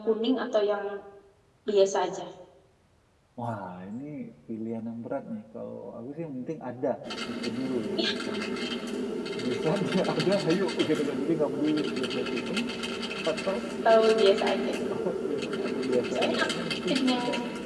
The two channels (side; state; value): both; identical; correlation 1.00